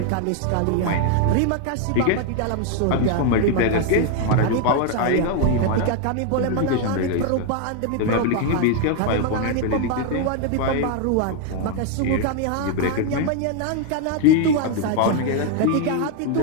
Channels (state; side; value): different; both; correlation 0.00